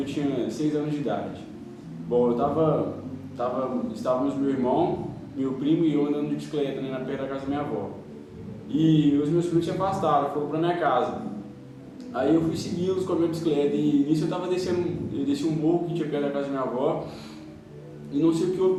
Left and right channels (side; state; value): both; identical; correlation 1.00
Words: tinha 6 anos de idade. Bom, estávamos meu irmão, meu primo e eu andando de bicicleta, né, na perto da casa da minha avó. E os meus primos se afastaram, foram para minha casa. Aí eu fui segui-los com a minha bicicleta e nisso eu desci um morro que tinha perto da casa da minha avó e não sei o que houve